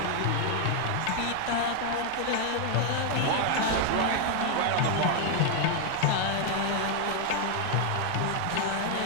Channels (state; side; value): different; both; correlation 0.00